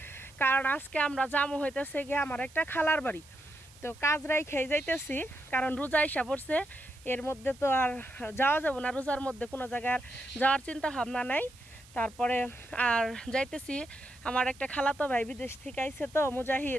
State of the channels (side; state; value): right; noise; hiss, 24 dB below the sound